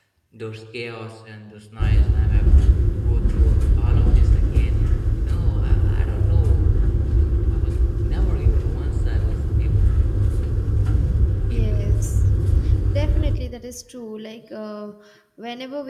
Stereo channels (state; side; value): identical; both; correlation 1.00